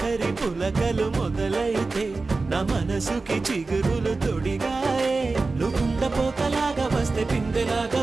పులకలు మొదలైతే నా మనసుకి చిగురులు తొడిగాయే నువ్వుండ పోతలాగా వస్తే పిందెలాగా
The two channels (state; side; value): quieter; left; 3.7 dB